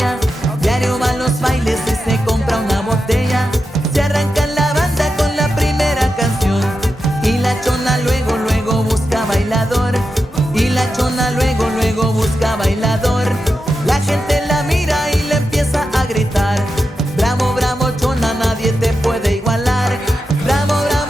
Diario va a los bailes y se compra una botella. Se arranca la banda con la primera canción. Y la Chona luego, luego busca bailador. Y la Chona luego, luego busca bailador. La gente la mira y le empieza a gritar: bravo, bravo, Chona, nadie te puede igualar. Bravo,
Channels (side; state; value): both; normal; correlation 0.89